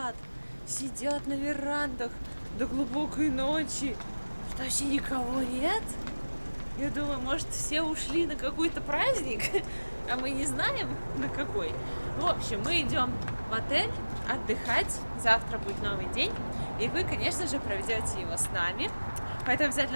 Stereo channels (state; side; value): inverted; both; correlation -1.00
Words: сидят на верандах до глубокой ночи. Что, вообще никого нет? Я думаю, может, все ушли на какой-то праздник, а мы не знаем, на какой. В общем, мы идем в отель отдыхать. Завтра будет новый день, и вы, конечно же, проведете его с нами. Поэтому